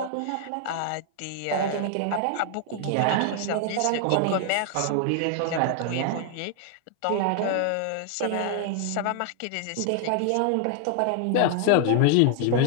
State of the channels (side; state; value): both; different; correlation 0.00